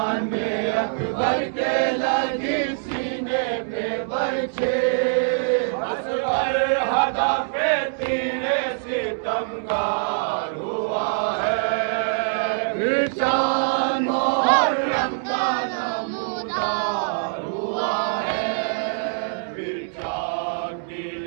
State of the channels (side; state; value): left; silent; 62 dB below the other